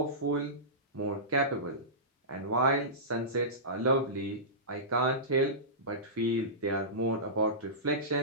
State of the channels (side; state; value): both; normal; correlation -0.19